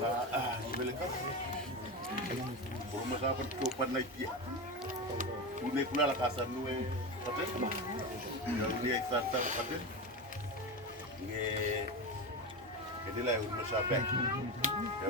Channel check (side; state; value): both; normal; correlation 0.19